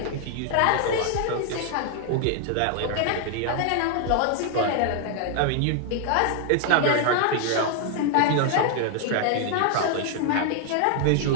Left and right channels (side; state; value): both; different; correlation 0.00